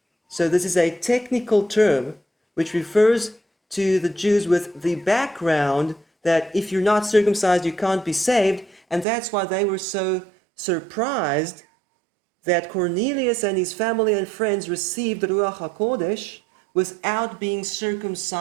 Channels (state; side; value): drops out; left; at 9.1 s